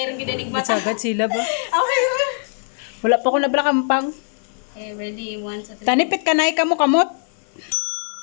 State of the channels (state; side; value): silent; right; 57 dB below the other